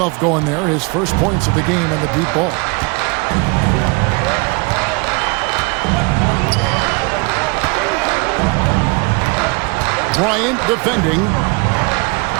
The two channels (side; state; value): left; quieter; 29.5 dB